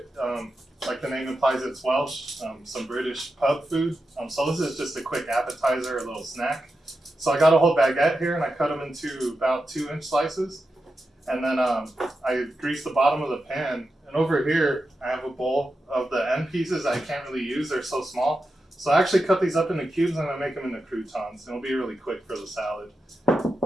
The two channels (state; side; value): normal; both; correlation 0.89